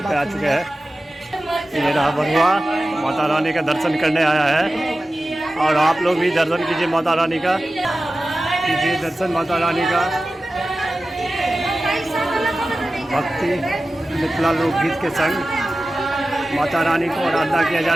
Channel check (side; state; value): both; normal; correlation 0.95